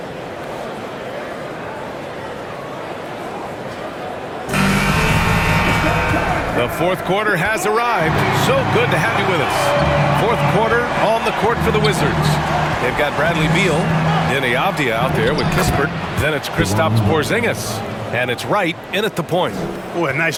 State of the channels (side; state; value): both; identical; correlation 1.00